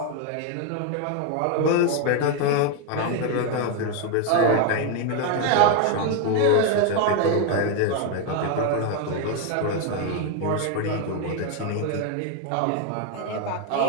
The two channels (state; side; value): different; both; correlation 0.01